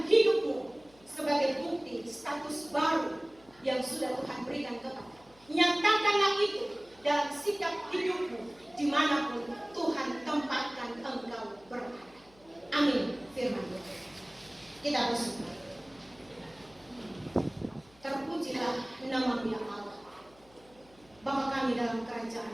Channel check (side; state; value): left; noise; hum, 28 dB below the sound